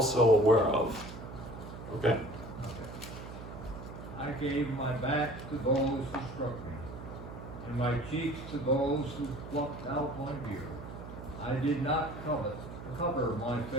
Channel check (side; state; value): right; noise; hum, 11 dB below the sound